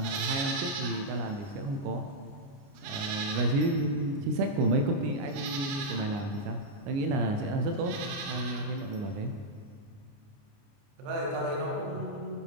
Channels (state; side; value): late; left; 29 ms